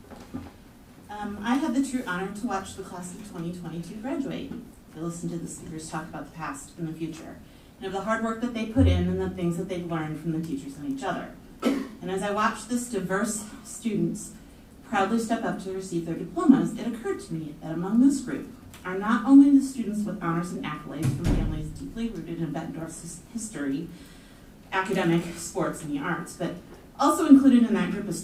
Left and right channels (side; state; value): both; identical; correlation 1.00